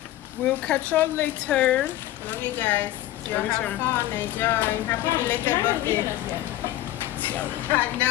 We'll catch y'all later. Love you guys. Love you too. Fun, enjoy. Happy belated birthday. I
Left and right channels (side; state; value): right; quieter; 14.5 dB